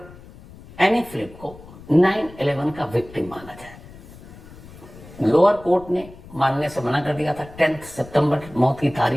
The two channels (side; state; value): left; noise; rumble, 19 dB below the sound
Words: एनी फिलिप को 9/11 का विक्टिम माना जाए। लोअर कोर्ट ने मानने से मना कर दिया था, 10 सितंबर मौत की